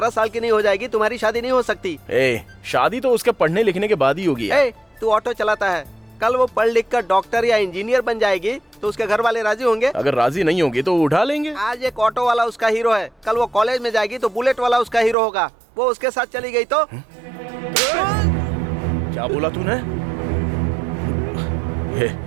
साल की नहीं हो जाएगी तुम्हारी शादी नहीं हो सकती। शादी तो उसके पढ़ने लिखने के बाद ही होगी यार। तू ऑटो चलाता है, कल वो पढ़ लिख कर डॉक्टर या इंजीनियर बन जाएगी तो उसके घर वाले राजी होंगे? अगर राजी नहीं होंगे तो उठा लेंगे। आज एक ऑटो वाला उसका हीरो है, कल वो कॉलेज में जाएगी तो बुलेट वाला उसका हीरो होगा। वो उसके साथ चली गई तो? क्या बोला तूने?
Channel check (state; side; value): drops out; left; at 15.2 s